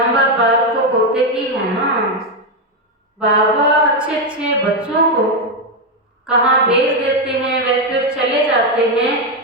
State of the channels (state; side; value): normal; both; correlation 0.06